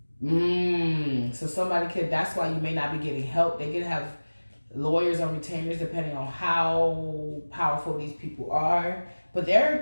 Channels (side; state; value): both; inverted; correlation -1.00